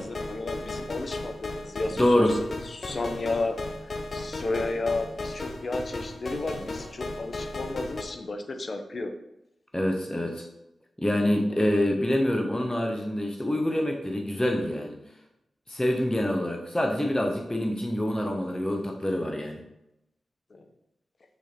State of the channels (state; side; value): normal; both; correlation 0.95